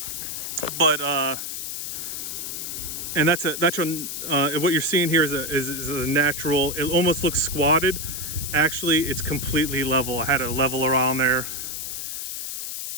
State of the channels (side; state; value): left; noise; hiss, 5 dB below the sound